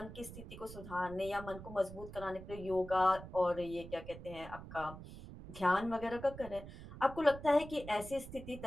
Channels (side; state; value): right; noise; rumble, 13 dB below the sound